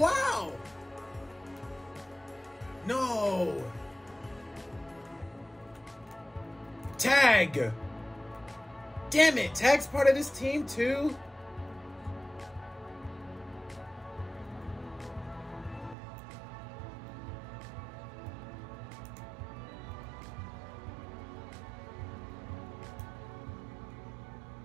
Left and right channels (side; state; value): left; drops out; at 16.0 s